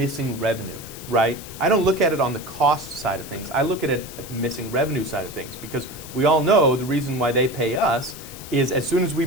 revenue, right? I don't look at it on the cost side of things. I look at it at the missing revenue side of things, because we all know the reason why they pay us is as soon as we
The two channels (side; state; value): left; noise; hiss, 14 dB below the sound